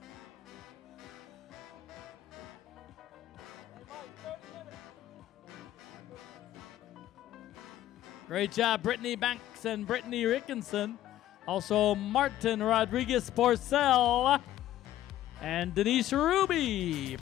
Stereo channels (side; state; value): right; quieter; 13.3 dB